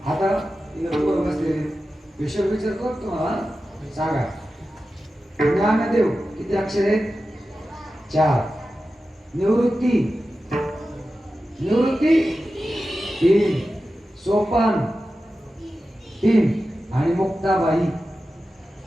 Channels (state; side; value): normal; both; correlation 0.93